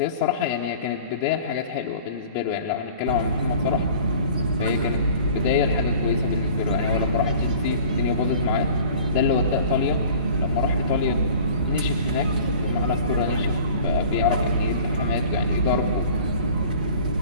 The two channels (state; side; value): inverted; both; correlation -0.46